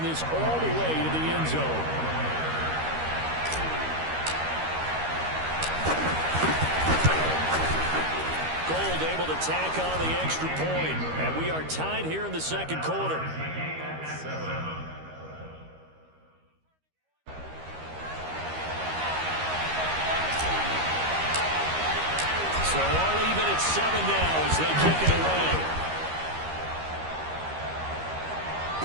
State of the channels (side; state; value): left; late; 13 ms